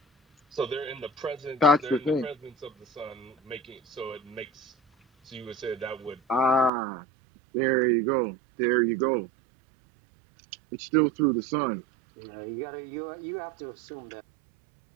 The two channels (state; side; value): drops out; left; at 6.7 s